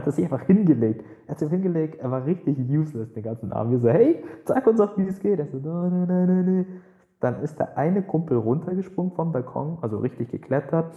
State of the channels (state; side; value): identical; both; correlation 1.00